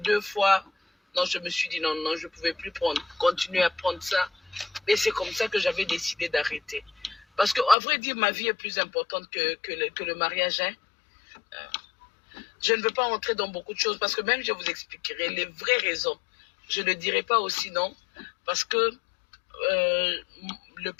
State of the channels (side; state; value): right; drops out; at 7.8 s